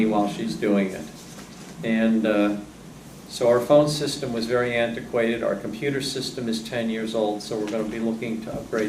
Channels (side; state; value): both; identical; correlation 1.00